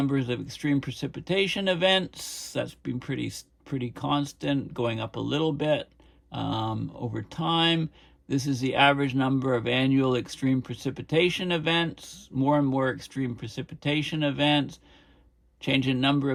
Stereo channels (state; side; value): identical; both; correlation 1.00